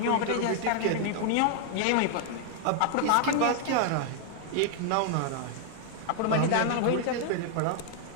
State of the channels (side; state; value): both; different; correlation 0.00